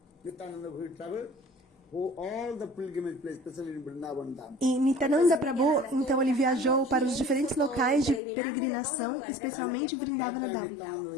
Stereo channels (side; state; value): right; drops out; at 8.2 s